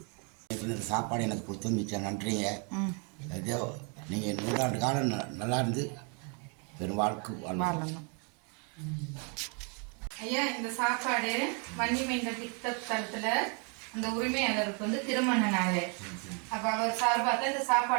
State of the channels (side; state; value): left; quieter; 36.6 dB